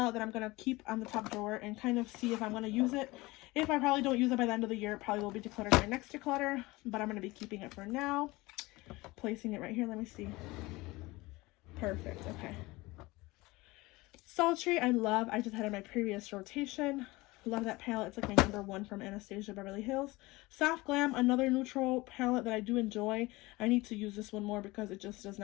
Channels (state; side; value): quieter; right; 21.5 dB